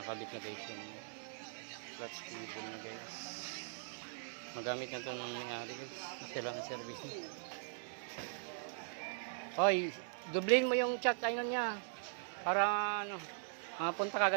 na guys yung clutch cable na guys. Magamit na ito ng may-ari guys, isa lang ang service niya. Hoy, dublin mo yung chat ayun niya para ano, mapunta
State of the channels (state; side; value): silent; left; 51 dB below the other